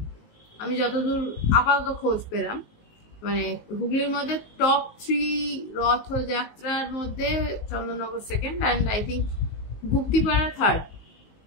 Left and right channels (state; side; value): late; right; 19 ms